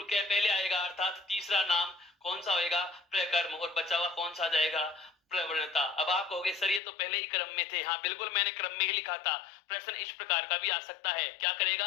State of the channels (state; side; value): drops out; right; at 6.8 s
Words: कै पहले आएगा, अर्थात तीसरा नाम कौन सा होएगा, प्रकर्म, और बचा हुआ कौन सा जाएगा, प्रवणता। अब आप कहोगे सर ये तो पहले ही क्रम में थे, हाँ बिल्कुल मैंने क्रम में ही लिखा था। प्रश्न इस प्रकार का भी आ सकता है, क्या करेगा,